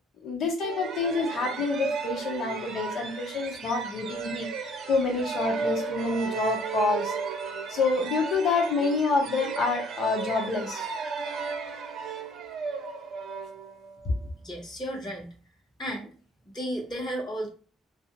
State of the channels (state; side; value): normal; both; correlation 0.56